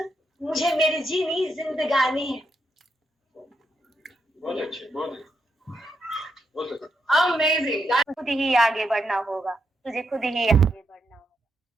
मुझे मेरी जीनी जिंदगानी है। बहुत अच्छे, बहुत अच्छे। अमेजिंग। खुद ही आगे बढ़ना होगा, तुझे खुद ही आगे बढ़ना होगा,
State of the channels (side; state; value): both; normal; correlation 0.81